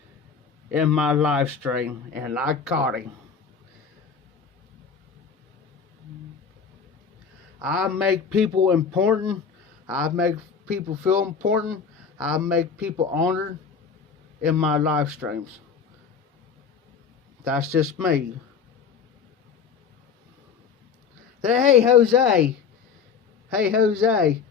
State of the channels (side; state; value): right; quieter; 6.1 dB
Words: in my live stream, and I caught him. I make people important. I make people feel important. I make people honored in my live streams. That's just me. Hey, Jose. Hey, Jose.